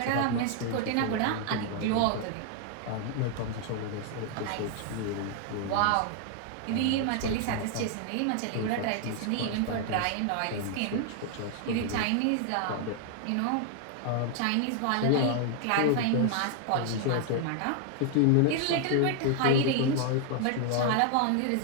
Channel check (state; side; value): different; both; correlation 0.00